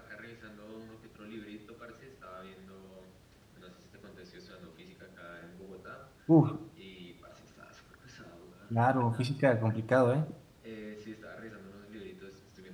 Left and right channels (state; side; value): identical; both; correlation 1.00